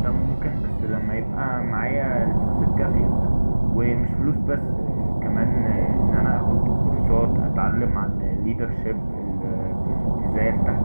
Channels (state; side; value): inverted; both; correlation -1.00